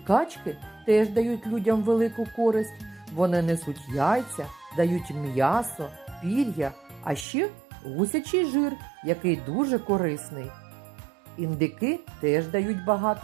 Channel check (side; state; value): left; drops out; at 7.2 s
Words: теж дають людям велику користь. Вони несуть яйця, дають м'ясо, пір'я, а ще гусячий жир, який дуже корисний. Індики теж дають